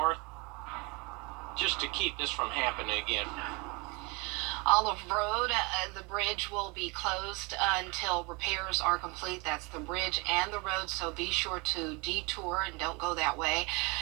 just to keep this from happening again. Olive Road, the bridge will be closed until repairs are complete. That's the bridge and the road, so be sure to detour and don't go that way.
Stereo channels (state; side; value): quieter; left; 28.2 dB